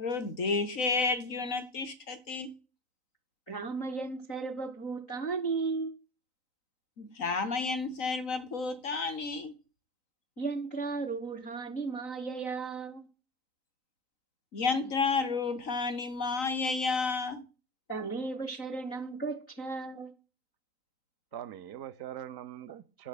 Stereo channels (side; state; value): right; late; 3.9 ms